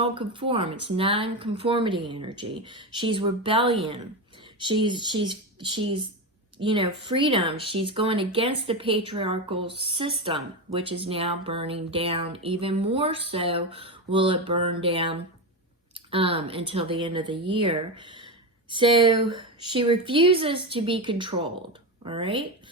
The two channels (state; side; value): normal; both; correlation 0.15